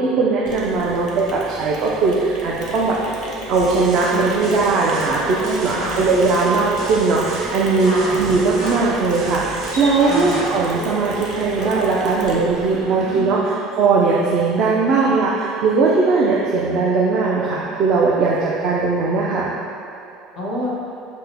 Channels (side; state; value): left; quieter; 3.5 dB